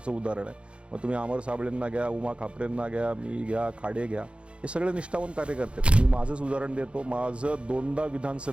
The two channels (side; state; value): left; late; 0.058 ms